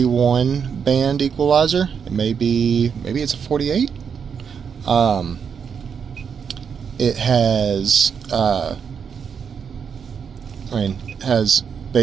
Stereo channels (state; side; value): quieter; left; 6.8 dB